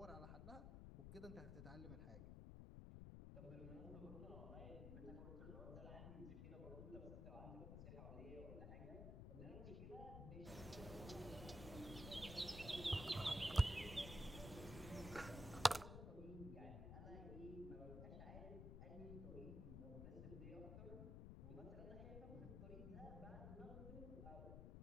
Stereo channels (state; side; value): noise; left; rumble, 7 dB below the sound